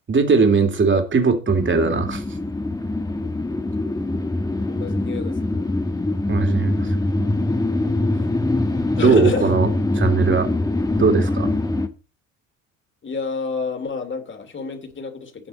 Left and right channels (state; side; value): normal; both; correlation 0.61